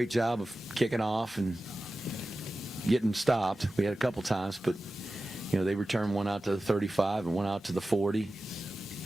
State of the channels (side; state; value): both; normal; correlation 0.95